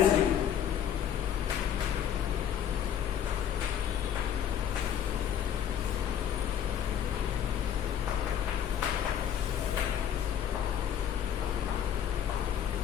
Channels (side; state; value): right; quieter; 9.5 dB